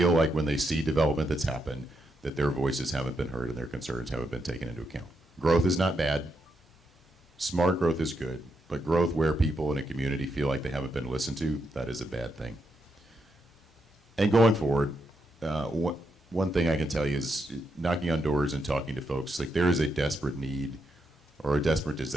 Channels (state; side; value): normal; both; correlation 0.82